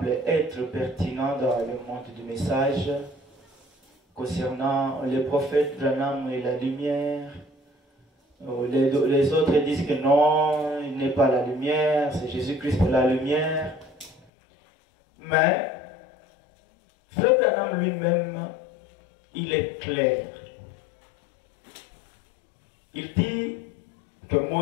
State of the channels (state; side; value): drops out; right; at 14.2 s